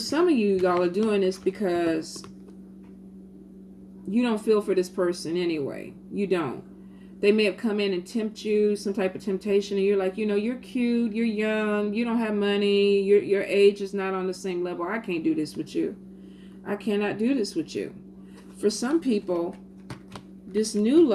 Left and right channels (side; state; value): both; identical; correlation 1.00